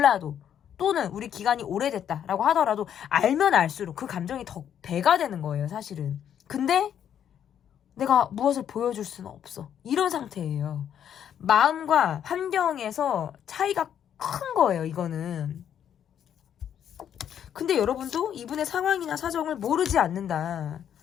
또는 우리 기간이 오래됐다라고 하더라도 알면 알수록 그 감정이 더 배가 되는 거예요. 사실은. 근데 내가 무엇을 보여줄 수는 없어. 이런 상태예요. 마음과 환경에서 차이가 큰 거예요, 이거는. 근데 여러분도 이분의 상황이나 사정을 모르지 않는다.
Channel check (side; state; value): right; quieter; 9.4 dB